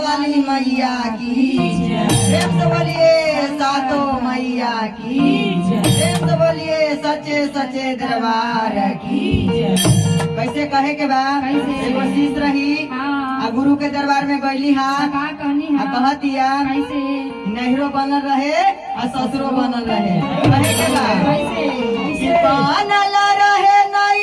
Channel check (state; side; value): identical; both; correlation 1.00